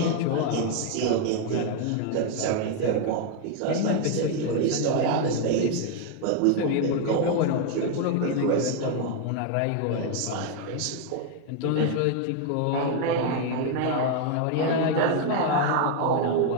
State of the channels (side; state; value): both; different; correlation 0.00